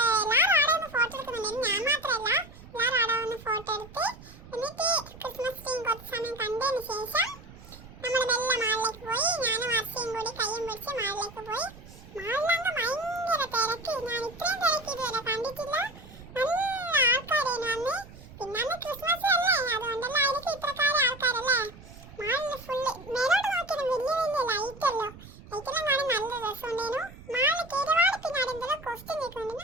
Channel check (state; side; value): noise; right; rumble, 18 dB below the sound